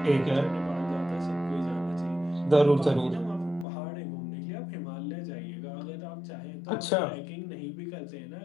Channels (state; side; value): drops out; right; at 3.7 s